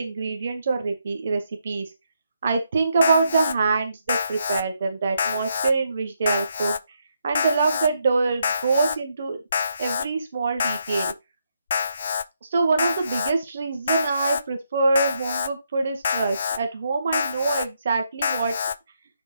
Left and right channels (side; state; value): both; inverted; correlation -0.78